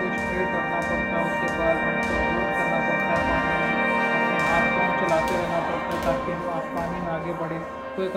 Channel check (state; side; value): identical; both; correlation 1.00